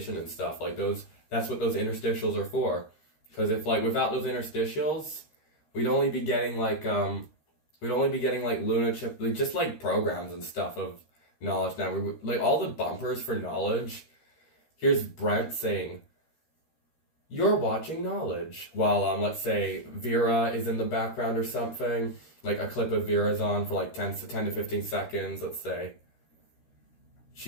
and stuff. Like, that's what those interstitials are for. Because if, like, without those interstitials, we'd only be getting, like, Luna Chip, like, just, like, programs and stuff of Knowledge Network. Like, all the bumpers for Knowledge, here's Brent saying, "You're watching Knowledge," while, let's say, Vera is in the background or something. Like, a clip of Vera's on for, like, 10 to 15 seconds, let's say.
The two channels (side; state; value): right; late; 13 ms